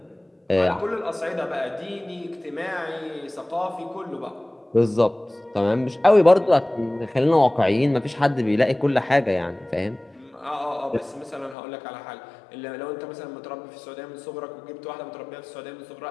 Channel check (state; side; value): drops out; right; at 11.6 s